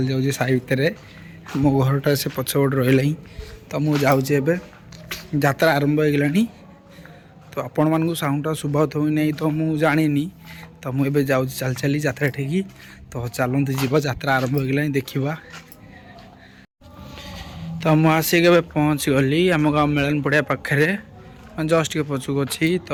जाऊँगी साई भितर मो घरटा से पछपट रही। तो मुझे जाऊँगी यात्रा आरंभ हो गलानी। तो आपण मानू साउंडटा शुभत हो नहीं तो मुझे जानी। तो मुझे जाऊँ चल चली यात्रा ठीक। तो चलते जीव यात्रा आरंभ हो गलानी देखा। तो मुझे आसिक पहुँच गली आम गाँव मेलन पड़िया पाखे जस्ट के पछुक अच्छी।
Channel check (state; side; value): identical; both; correlation 1.00